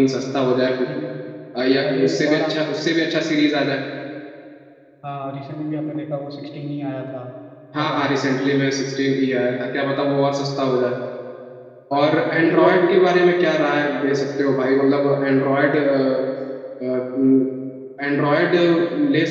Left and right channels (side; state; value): both; identical; correlation 1.00